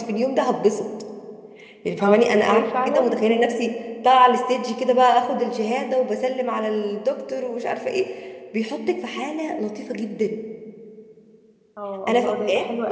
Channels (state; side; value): identical; both; correlation 1.00